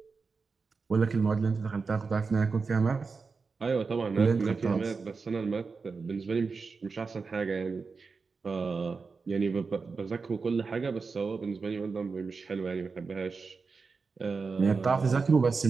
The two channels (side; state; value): left; quieter; 4.7 dB